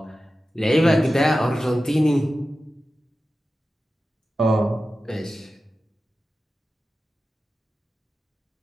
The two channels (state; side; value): normal; both; correlation 0.93